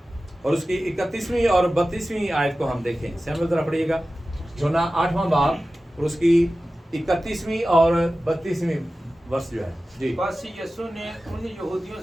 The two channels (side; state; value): both; normal; correlation 0.95